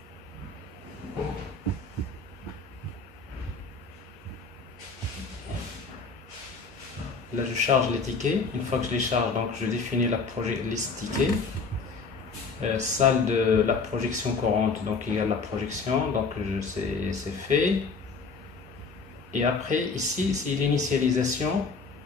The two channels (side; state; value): right; quieter; 4.5 dB